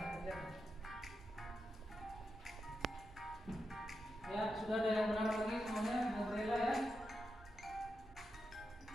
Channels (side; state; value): both; normal; correlation 0.87